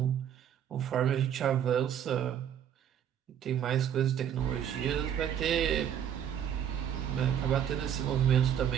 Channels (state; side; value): quieter; left; 9.4 dB